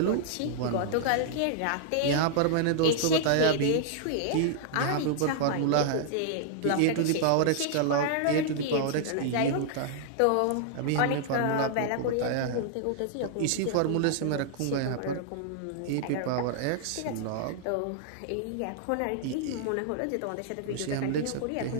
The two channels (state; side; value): different; both; correlation -0.01